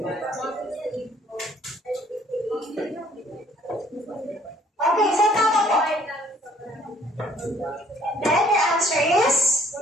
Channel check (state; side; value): normal; both; correlation 0.61